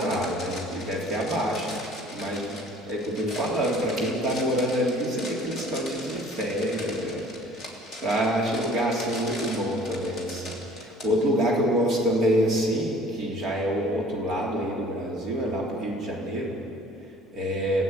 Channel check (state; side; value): normal; both; correlation 0.52